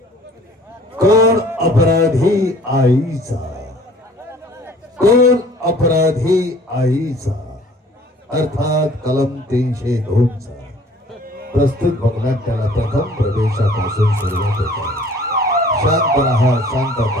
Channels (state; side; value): normal; both; correlation 0.52